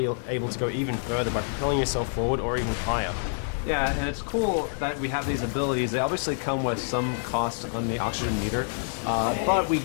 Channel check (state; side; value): silent; right; 60 dB below the other